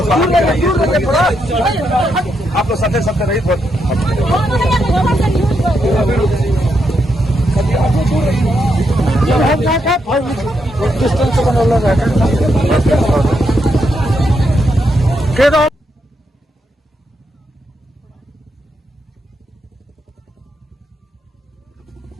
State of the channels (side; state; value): both; normal; correlation 0.81